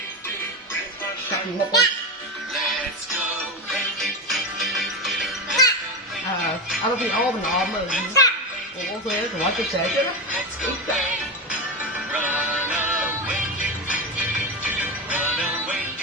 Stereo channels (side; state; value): both; normal; correlation 0.18